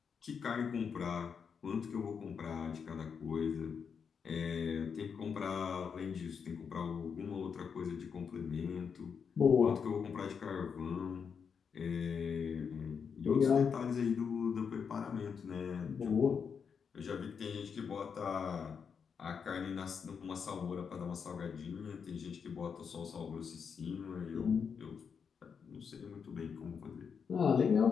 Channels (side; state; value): right; quieter; 6.4 dB